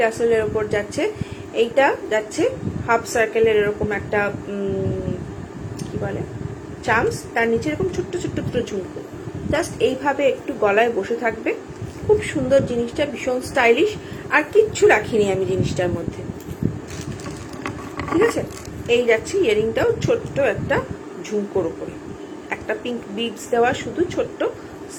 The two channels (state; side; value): identical; both; correlation 1.00